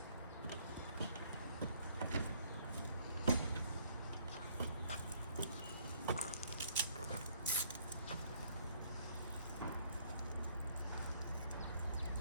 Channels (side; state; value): both; inverted; correlation -0.63